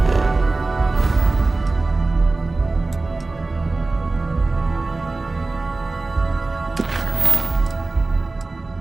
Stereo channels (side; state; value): left; quieter; 3.4 dB